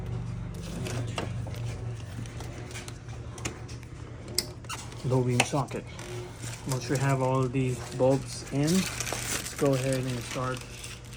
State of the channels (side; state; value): both; identical; correlation 1.00